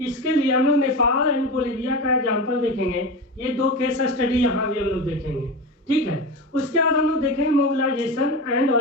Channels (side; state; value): both; normal; correlation 0.23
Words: इसके लिए हम लोग नेपाल एंड बोलिविया का एग्जाम्पल देखेंगे। ये 2 केस स्टडी यहाँ भी हम लोग देखेंगे, ठीक है। उसके बाद हम लोग देखेंगे मोबिलाइजेशन एंड